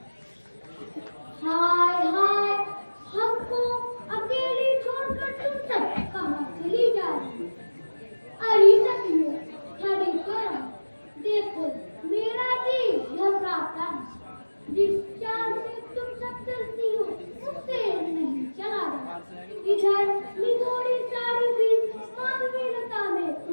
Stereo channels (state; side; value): inverted; both; correlation -1.00